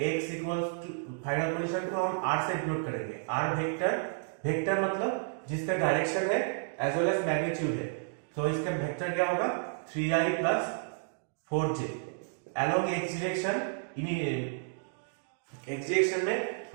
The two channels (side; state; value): left; silent; digital silence